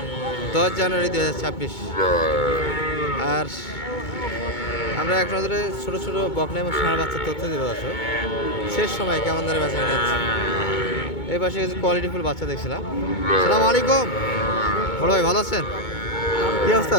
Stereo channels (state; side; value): late; right; 2.2 ms